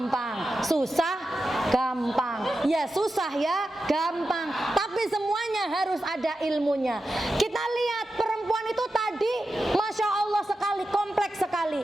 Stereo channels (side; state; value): both; normal; correlation 0.91